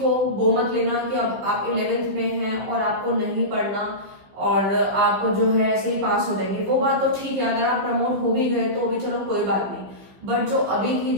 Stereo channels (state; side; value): late; left; 15 ms